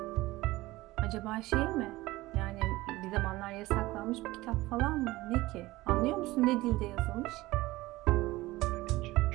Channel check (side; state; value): left; quieter; 18.9 dB